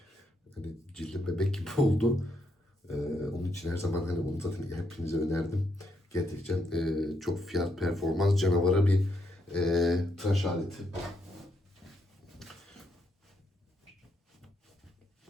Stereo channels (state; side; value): normal; both; correlation 0.77